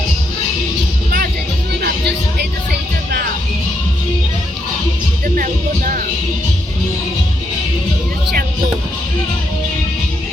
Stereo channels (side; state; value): both; normal; correlation 0.78